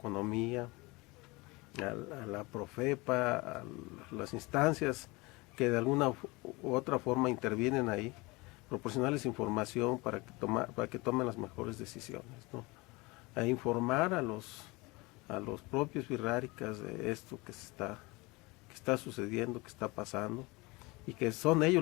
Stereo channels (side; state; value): right; quieter; 24.4 dB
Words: a la Profepa, a las instancias que de alguna u otra forma intervienen ahí, proporcionarles información para que tomen las mejores decisiones, ¿no? A informar a los propios wixárikas de esto que está sucediendo, que está pasando, y que son